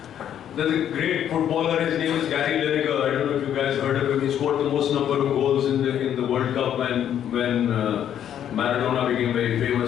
There's a great footballer, his name is Gary Lineker. I don't know if you guys heard of him. He scored the most number of goals in the World Cup when Maradona became very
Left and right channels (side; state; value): right; quieter; 10.0 dB